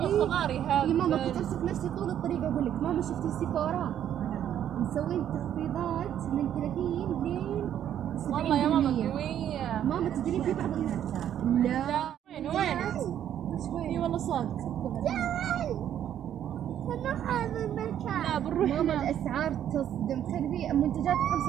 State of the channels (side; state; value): left; quieter; 10.3 dB